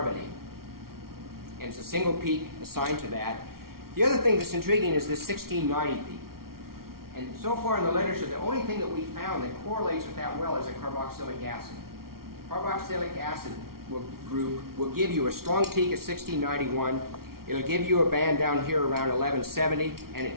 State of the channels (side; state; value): left; late; 0.93 ms